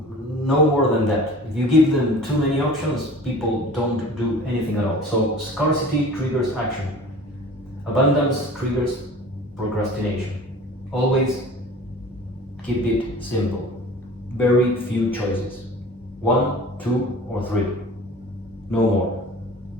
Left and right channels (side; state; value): both; normal; correlation 0.42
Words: no more than that. If you give them too many options, people don't do anything at all. So scarcity triggers action, abundance triggers procrastination. Always keep it simple. Very few choices. 1, 2, or 3. No more.